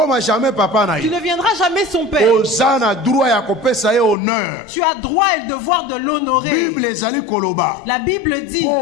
deviendras jamais son père. Tu as droit et le devoir de l'honorer. La Bible dit,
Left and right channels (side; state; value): right; drops out; at 4.2 s